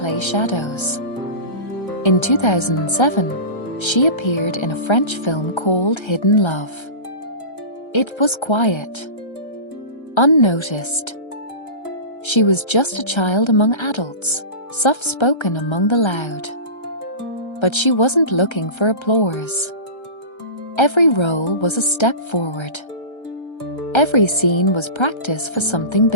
shadows. In 2007, she appeared in a French film called Hidden Love. It was quiet, unnoticed. She was just a child among adults, soft-spoken among the loud. But she wasn't looking for applause. Every role was a step forward. Every scene was practice for something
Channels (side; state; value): right; late; 1.3 ms